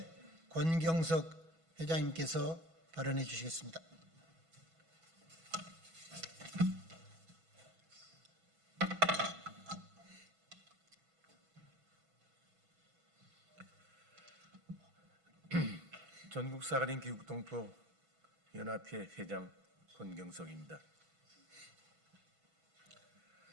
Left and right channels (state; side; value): late; left; 6.1 ms